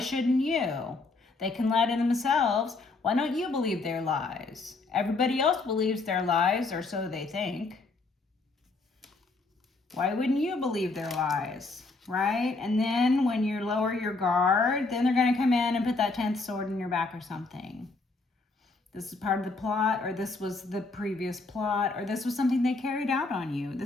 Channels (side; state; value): right; quieter; 3.6 dB